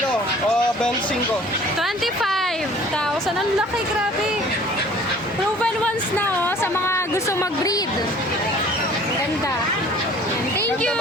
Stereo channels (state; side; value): normal; both; correlation 0.50